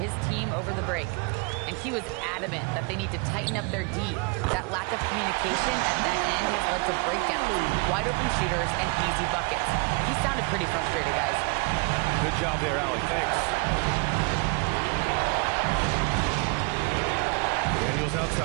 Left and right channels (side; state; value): left; quieter; 31.0 dB